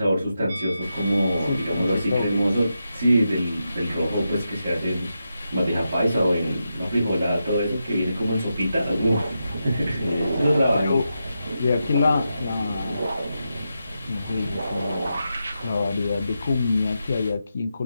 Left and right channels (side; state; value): both; inverted; correlation -0.87